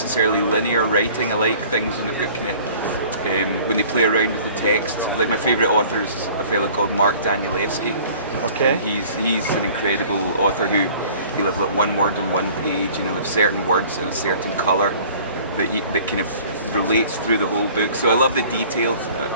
linear writing. I like things when they've got kind of when they play around with the text. Like my favourite author is a fellow called Mark Danielewski. Okay. And he's an incredible author he'll have like one word on one page, you know, have certain words in a certain colour that kind of relates through the whole book. So I love the detail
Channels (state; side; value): inverted; both; correlation -0.49